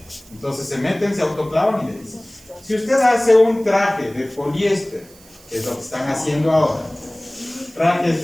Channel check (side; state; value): right; noise; hiss, 24 dB below the sound